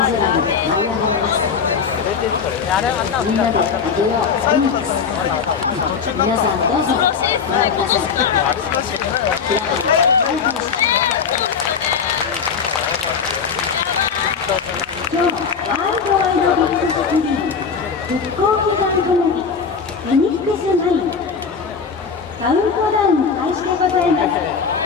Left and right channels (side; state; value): right; quieter; 6.0 dB